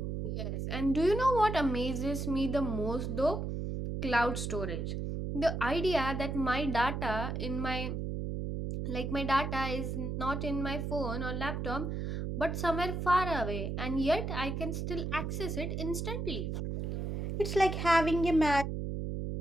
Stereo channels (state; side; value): noise; right; hum, 3 dB below the sound